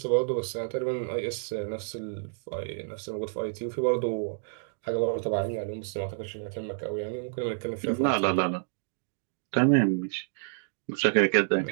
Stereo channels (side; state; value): left; silent; digital silence